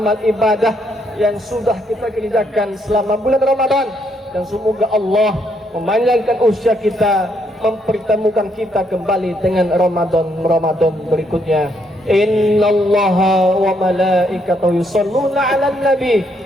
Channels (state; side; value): normal; both; correlation 0.73